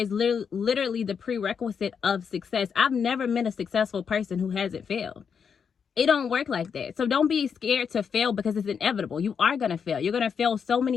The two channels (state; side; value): quieter; right; 6.7 dB